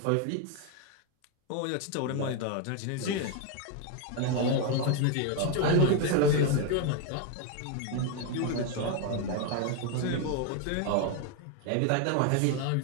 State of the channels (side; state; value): both; different; correlation 0.01